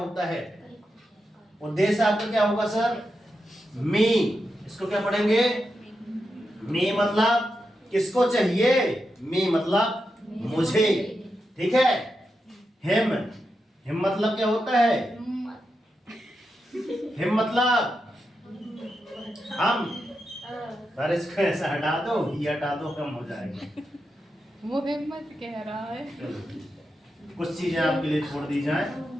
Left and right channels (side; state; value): both; normal; correlation 0.87